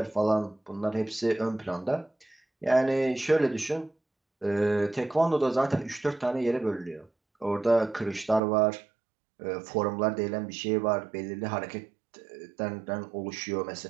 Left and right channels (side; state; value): left; drops out; at 8.4 s